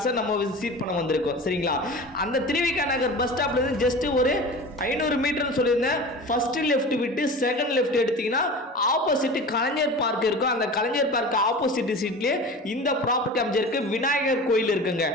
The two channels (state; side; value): normal; both; correlation 0.35